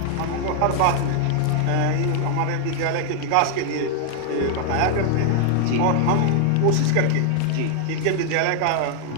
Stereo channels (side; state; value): both; different; correlation 0.00